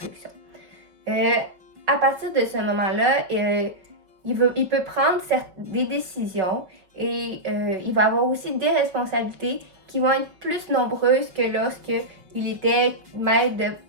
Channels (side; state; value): left; late; 5.4 ms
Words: À partir de ce moment-là, il peut prendre des décisions et il va avoir aussi des responsabilités qui vont être plus nombreuses que lorsqu'il était maître de